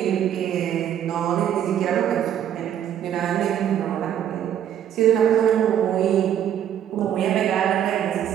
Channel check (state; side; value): quieter; left; 10.2 dB